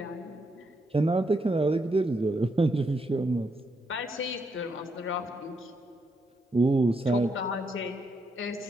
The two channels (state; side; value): normal; both; correlation 0.79